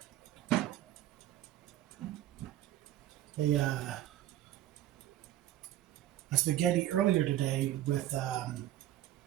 uh, a spaghetti earlier today with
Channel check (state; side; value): quieter; left; 13.2 dB